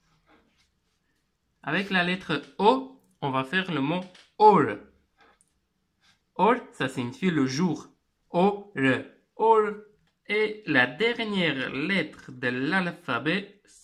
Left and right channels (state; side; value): identical; both; correlation 1.00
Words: Avec la lettre O, on va faire le mot Or. Or, ça signifie le jour. Or. Or. Et la dernière lettre de l'alphabet,